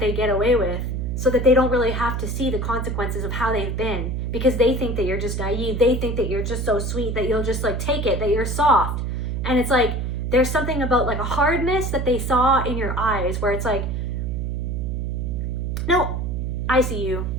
get away with, so that they don't really have to see the consequences of how they've been, because they think that you're just naive. They think that you're just so sweet that you'll just like take it, that you're soft. And it's like, there's something about like a hardness that they saw in your eyes where it's like, no, I see you.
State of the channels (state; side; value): noise; right; hum, 2 dB below the sound